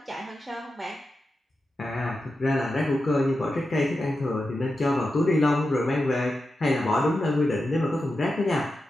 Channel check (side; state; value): both; normal; correlation 0.90